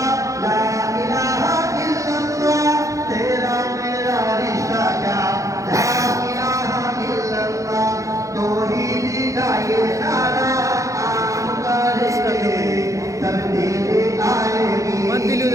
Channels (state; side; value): late; left; 0.15 ms